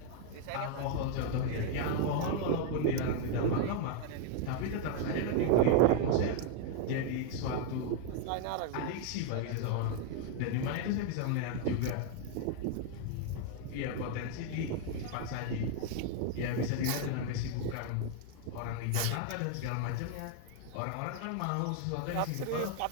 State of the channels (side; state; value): both; different; correlation 0.00